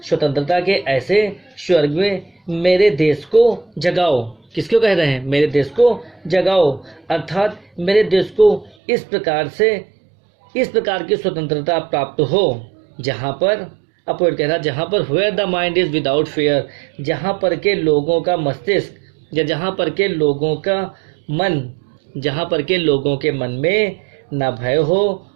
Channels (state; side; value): drops out; left; at 8.8 s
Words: स्वर्ग में मेरे देश को जगाओ। किसको कह रहे हैं? मेरे देश को जगाओ, अर्थात मेरे देश को इस प्रकार की स्वतंत्रता प्राप्त हो जहाँ पर पोएट कह रहा है जहाँ पर where the mind is without fear, जहाँ पर के लोगों का मस्तिष्क या जहाँ पर के लोगों के मन में न भय हो